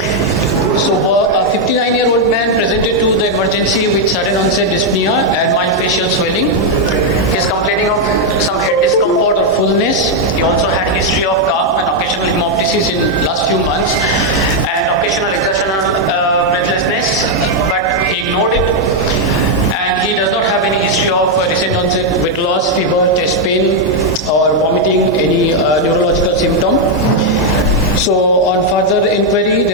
So a 59-year-old man presented to the emergency with sudden onset dyspnea and mild facial swelling. He is complaining of some head discomfort or fullness. He also had history of cough and occasional hemoptysis in last few months, and occasional exertional breathlessness, but he ignored it. And he does not have any history of recent onset weight loss, fever, chest pain, or vomiting, any neurological symptom. So on further inquiry,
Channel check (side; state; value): both; normal; correlation 0.00